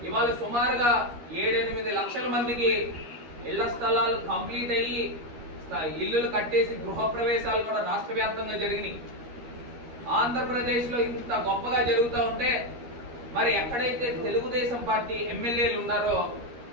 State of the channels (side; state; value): left; late; 13 ms